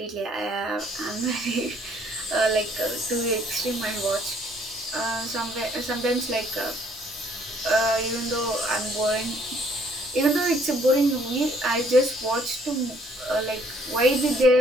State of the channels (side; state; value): both; normal; correlation 0.63